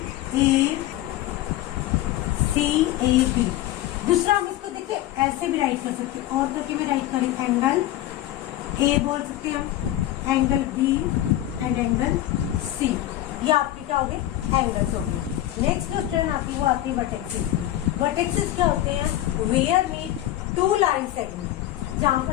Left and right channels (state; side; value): quieter; right; 14.1 dB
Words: A B. दूसरा हम इसको देखिए ऐसे भी राइट कर सकते हैं, और करके भी राइट करें। एंगल ए बोल सकते हैं हम, angle B and angle C. ये आपके क्या हो गए? एंगल्स हो गए। नेक्स्ट जो टर्न आती है वो आती है वर्टेक्सेस। वर्टेक्सेस क्या होते हैं? वेयर मीट 2 लाइन सेगमेंट, जहां